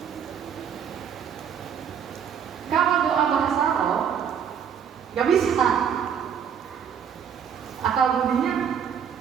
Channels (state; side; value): quieter; left; 7.9 dB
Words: Kalau doa bahasa roh, nggak bisa. Akal budinya